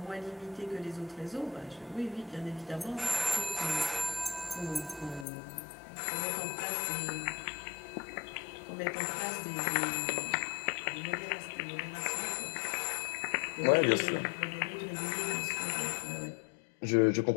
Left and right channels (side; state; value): right; drops out; at 5.2 s